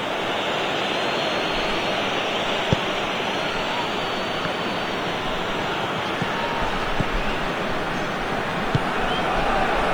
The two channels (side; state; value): right; noise; hiss, 28 dB below the sound